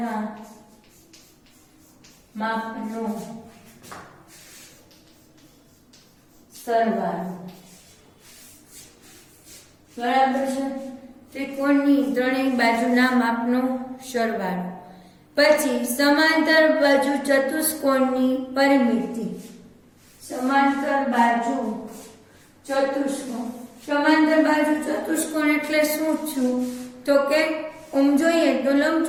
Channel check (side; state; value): both; identical; correlation 1.00